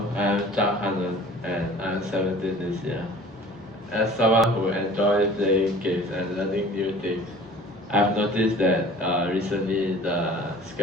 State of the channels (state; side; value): normal; both; correlation 0.46